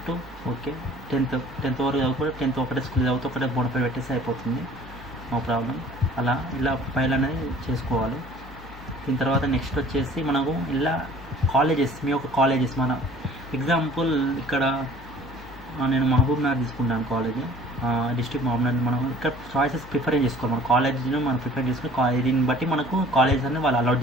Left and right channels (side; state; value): left; noise; hum, 18 dB below the sound